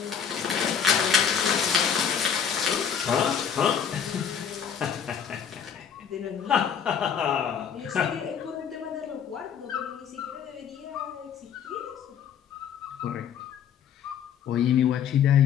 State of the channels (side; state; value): right; quieter; 7.9 dB